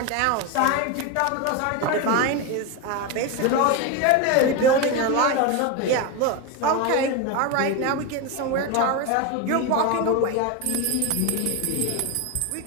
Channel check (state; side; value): different; both; correlation 0.03